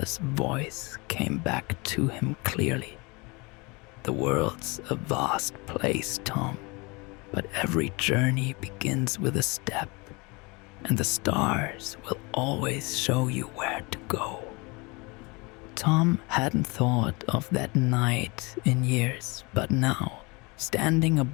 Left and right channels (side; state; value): right; quieter; 27.3 dB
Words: voice came back to him clearly. The world's a vast place, Tom, but every journey begins with a step, and the stars will always show you where to go. Tom hadn't thought of that night in years, but now, standing